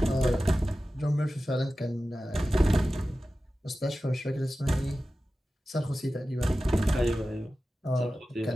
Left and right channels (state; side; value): normal; both; correlation 0.95